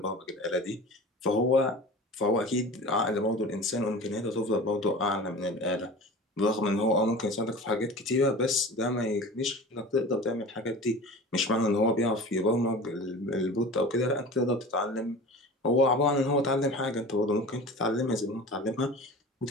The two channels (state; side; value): normal; both; correlation 0.36